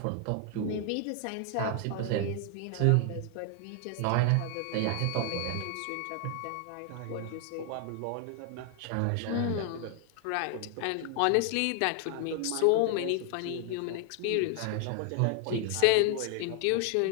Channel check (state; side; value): different; both; correlation 0.00